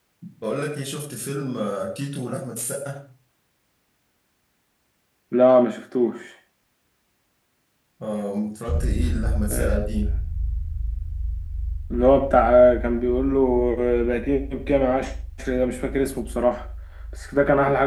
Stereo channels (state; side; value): identical; both; correlation 1.00